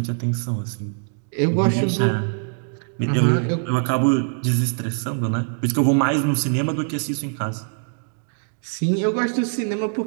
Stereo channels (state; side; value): silent; left; 64 dB below the other